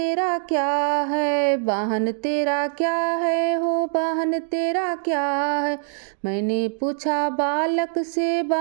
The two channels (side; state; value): left; silent; digital silence